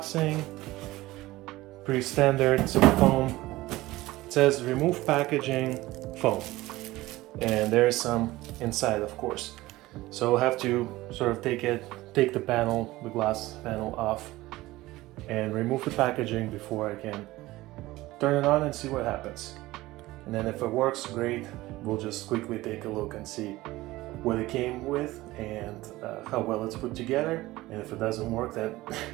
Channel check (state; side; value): quieter; left; 18.3 dB